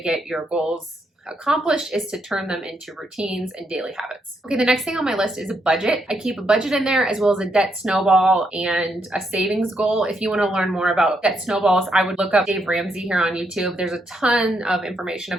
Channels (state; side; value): normal; both; correlation 0.78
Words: get your goals accomplished, is to turn them into routines and daily habits. Okay, the next thing on my list is a budget. I keep a budget in there, as well as a debt snowball and a savings goal. If you want to learn more about debt snowballs, I would look up Dave Ramsey here on YouTube. There's a ton of information